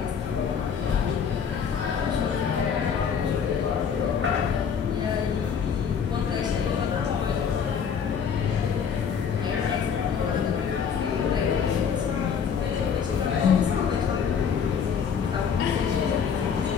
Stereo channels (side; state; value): right; quieter; 7.0 dB